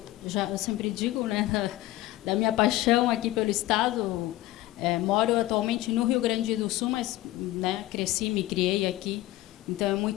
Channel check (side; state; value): right; quieter; 16.5 dB